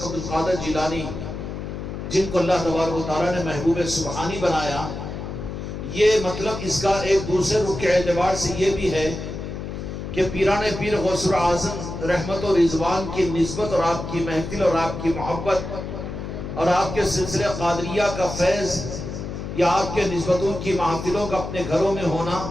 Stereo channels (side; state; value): left; noise; hum, 7 dB below the sound